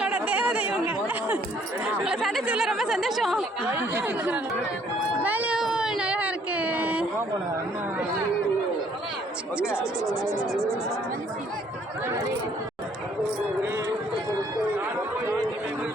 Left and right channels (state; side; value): normal; both; correlation 0.63